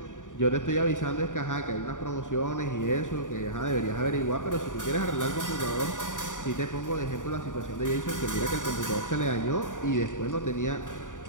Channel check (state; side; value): late; right; 0.87 ms